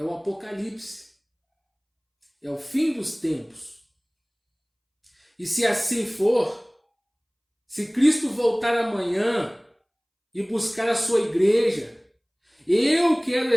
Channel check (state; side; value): identical; both; correlation 1.00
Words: o apocalipse, é o fim dos tempos. E se assim for, se Cristo voltar amanhã e buscar a sua igreja, eu quero